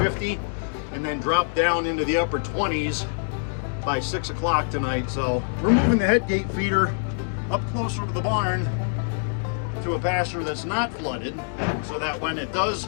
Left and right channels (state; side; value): silent; right; digital silence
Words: 50 and then drop down into the upper 20s by 6 o'clock tonight. So we're moving the head gate feeder up closer to the barn to a pasture that's not flooded, so that when it does